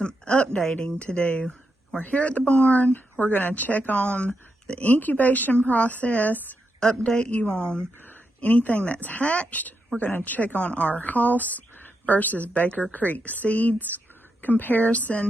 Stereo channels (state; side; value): normal; both; correlation 0.84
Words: updating to do. We're here at the barn. We're going to check on the incubation process, update you on anything that's hatched. We're going to check on our Hoss versus Baker Creek seeds